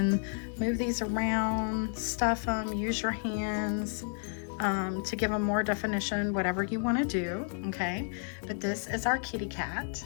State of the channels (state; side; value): silent; right; 57 dB below the other